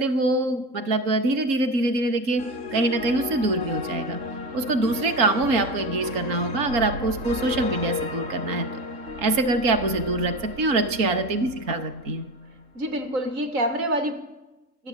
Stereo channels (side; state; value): left; late; 3.7 ms